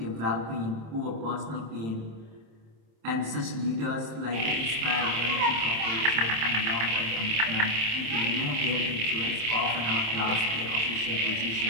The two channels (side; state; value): left; late; 27 ms